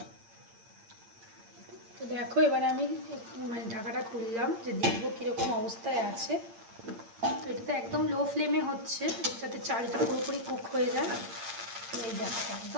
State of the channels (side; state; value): left; late; 8.8 ms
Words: তো দেখো এবারে আমি মানে ঢাকাটা খুললাম যে দেখবো কীরকম অবস্থায় আছে। তো এটা তো একদম লো ফ্লেমে হচ্ছে যাতে চালটা পুরোপুরি কুক হয়ে যায়। তো এই দেখো